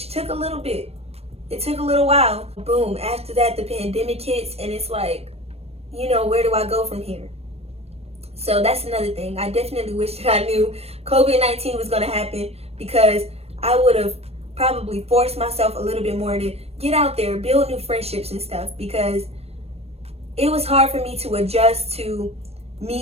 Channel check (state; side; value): late; left; 0.29 ms